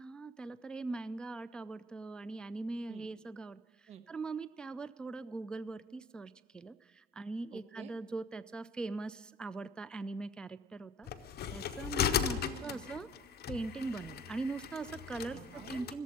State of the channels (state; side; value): normal; both; correlation 0.53